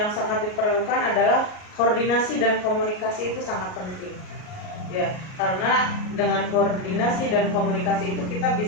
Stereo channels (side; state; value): right; late; 38 ms